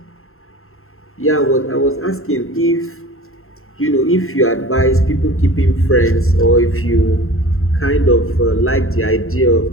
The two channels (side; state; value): right; late; 0.62 ms